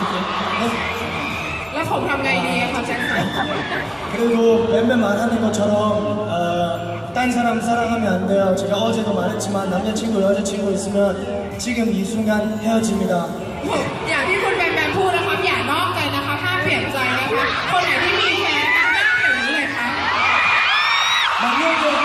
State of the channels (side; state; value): both; identical; correlation 1.00